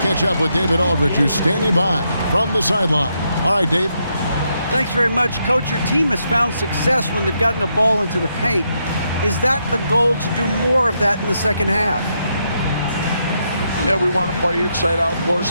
up with David Aldridge, who's standing by from the sideline. All right, Dave. Thanks very much, Coach. Your team has found success when they've gotten the ball into the paint. Is that the goal, to do more of that in the second half? Yeah, we want to play inside out, force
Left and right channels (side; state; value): both; inverted; correlation -0.80